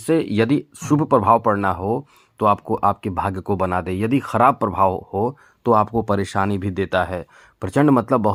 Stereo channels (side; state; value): both; identical; correlation 1.00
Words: यदि शुभ प्रभाव पड़ना हो तो आपको आपके भाग्य को बना दे, यदि खराब प्रभाव हो तो आपको परेशानी भी देता है। प्रचंड मतलब